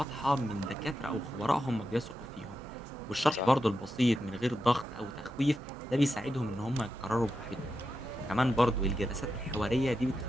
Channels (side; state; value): both; normal; correlation 0.88